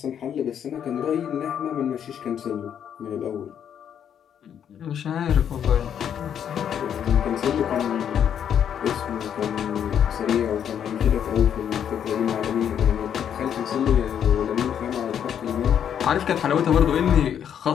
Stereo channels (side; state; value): right; quieter; 8.9 dB